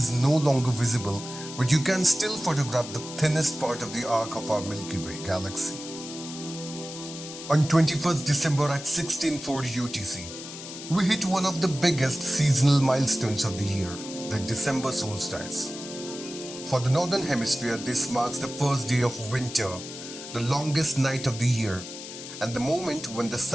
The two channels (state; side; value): noise; left; hiss, 11 dB below the sound